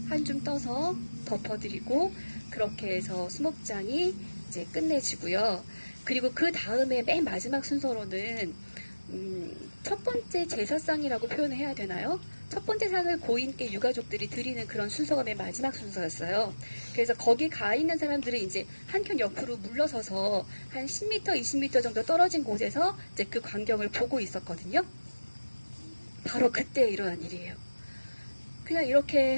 한 줌 떠서 덮어드리고, 그렇게 해서 수목장이 이제 끝내지고요. 그리고 그 다음에 맨 마지막 순서로는 첫 번째 제사상이라고 표현을 해야 되나요? 첫 번째 상을 고인께 유가족들이 드리는 그런 순서가 맨 마지막 순서였어요. 그래서 거기 가 있는 사람들은 이제 한켠 옆으로 물러서서 한 10m, 20m 정도 떨어진 곳에서 이제 그 광경을 보고 있었거든요. 바로 그때 일어난 일이에요. 그냥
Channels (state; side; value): inverted; both; correlation -1.00